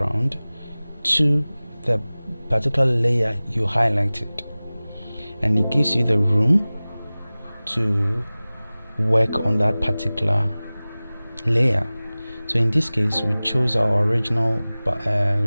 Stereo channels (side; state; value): both; inverted; correlation -0.98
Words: to the particular layer you highlighted, and it gives you the room to work on that particular layer. So in this case, we chose our original